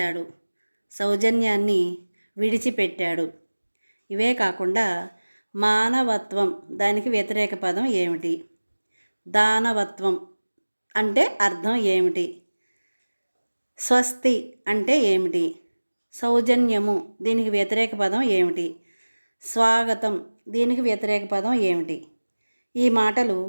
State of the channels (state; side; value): inverted; both; correlation -1.00